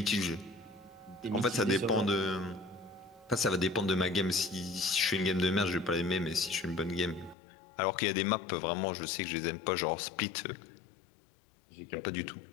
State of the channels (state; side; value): drops out; right; at 7.4 s